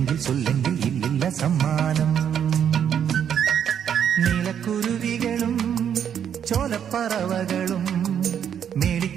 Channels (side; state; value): left; quieter; 8.7 dB